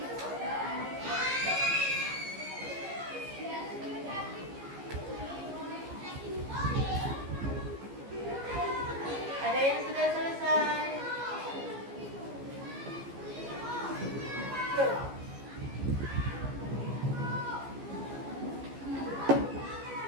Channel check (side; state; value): left; late; 15 ms